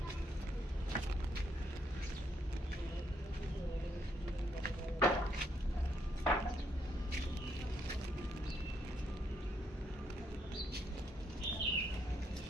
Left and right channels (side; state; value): both; normal; correlation 0.74